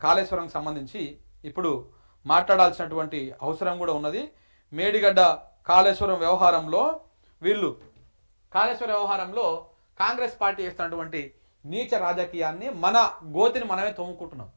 కాళేశ్వరంకి సంబంధించి ఇప్పుడు మాట్లాడాల్సినటువంటి అవసరం కూడా ఉన్నది. మేడిగడ్డ కాళేశ్వరం వ్యవహారంలో కాంగ్రెస్ పార్టీ చేస్తున్నటువంటి నీచ రాజకీయాన్ని మన గోతిని మనమే తోముకుంటున్నాం.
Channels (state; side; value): inverted; both; correlation -1.00